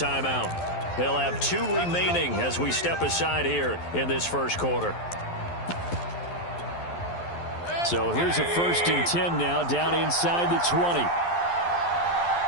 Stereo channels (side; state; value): right; late; 11 ms